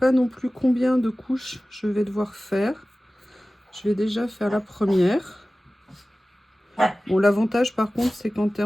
non plus combien de couches je vais devoir faire. Je vais déjà faire la première. Bon, l'avantage, par contre, c'est qu'en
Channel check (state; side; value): normal; both; correlation 0.97